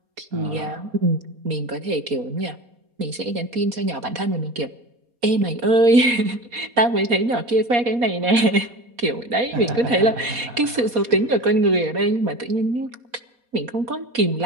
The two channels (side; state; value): left; late; 4.2 ms